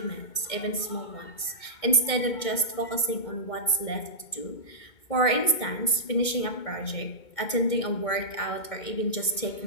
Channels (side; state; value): right; late; 2.2 ms